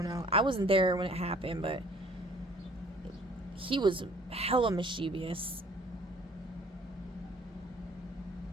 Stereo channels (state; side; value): normal; both; correlation 0.55